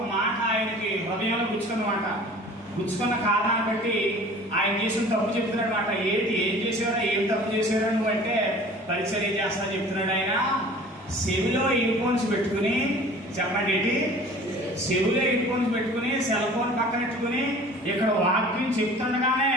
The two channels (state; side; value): normal; both; correlation 0.45